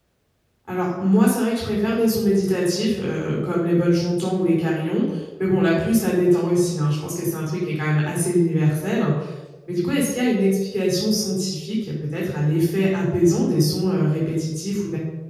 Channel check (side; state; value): both; identical; correlation 1.00